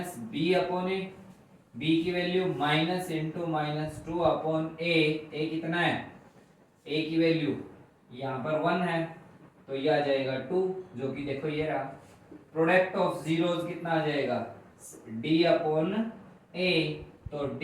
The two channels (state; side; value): identical; both; correlation 1.00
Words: upon a, b की value minus into -2 upon a कितना है a की वैल्यू यहाँ पर 1 है तो ये आ जाएगा 2, जो कि देखो ये रहा। प्रोडक्ट ऑफ जीरोस कितना आ जाएगा d अपॉन a, तो d